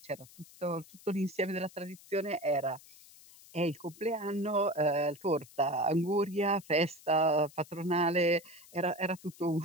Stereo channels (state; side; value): noise; left; hiss, 22 dB below the sound